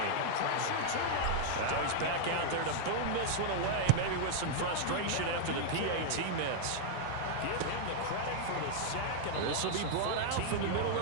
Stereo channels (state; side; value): different; both; correlation 0.00